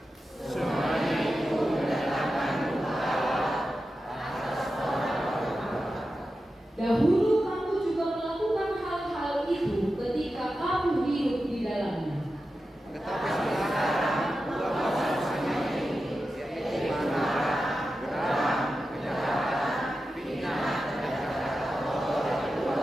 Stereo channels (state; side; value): normal; both; correlation 0.91